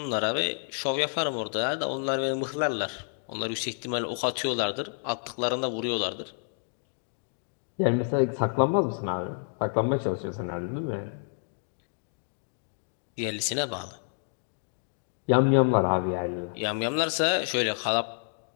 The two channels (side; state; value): right; silent; digital silence